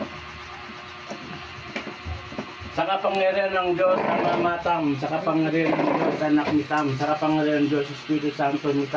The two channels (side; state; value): both; identical; correlation 1.00